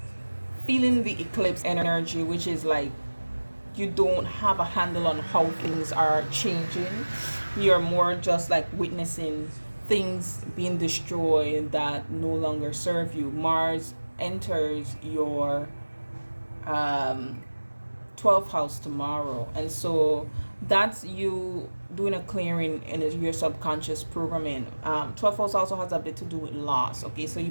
feeling the eclipse energy, which is like you don't have a handle on how things are changing. You're more just like witnessing things being destroyed that no longer serve you. Mars enters your 12th house tomorrow, and so that's you doing a clearing in your subconscious programming. 12th house also has a bit to do with loss. Okay, so you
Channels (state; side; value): inverted; both; correlation -1.00